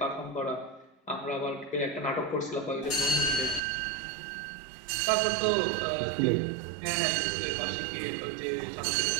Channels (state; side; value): drops out; left; at 3.6 s